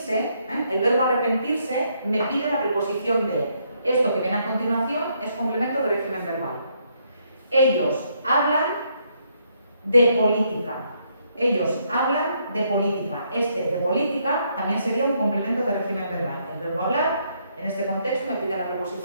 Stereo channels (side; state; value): both; inverted; correlation -0.73